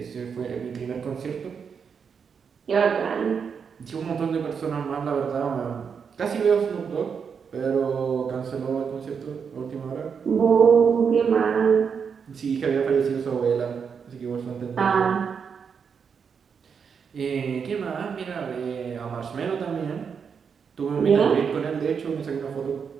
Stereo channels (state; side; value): quieter; left; 6.4 dB